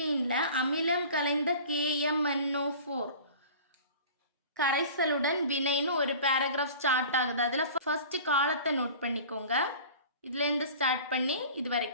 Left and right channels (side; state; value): both; inverted; correlation -0.41